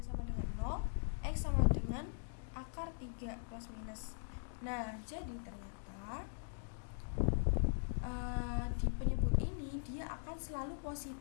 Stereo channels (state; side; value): silent; right; digital silence